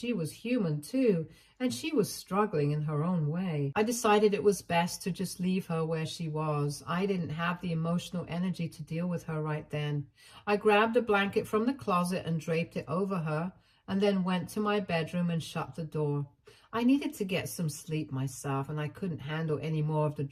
was human too, and she was struggling in her own way. I decided it was best to just leave her where she was. I didn't have the emotional energy to deal with her right then. I grabbed a blanket from the closet and draped it over her, and then went to my bedroom and shut the door. I needed to get some sleep myself, and I couldn't handle any more of the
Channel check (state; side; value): identical; both; correlation 1.00